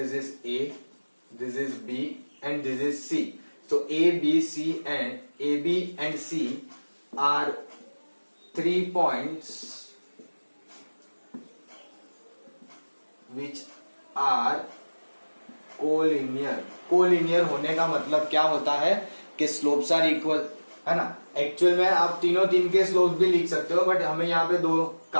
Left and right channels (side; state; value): both; inverted; correlation -1.00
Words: is A, this is B and this is C. So A, B, and C are 3 points which are collinear. Collinear होने का मतलब क्या होता है कि स्लोप्स आर इक्वल, है ना। एक्चुअल में आप तीन के स्लोप्स भी लिख सकते हो बट हमें यहाँ पे 2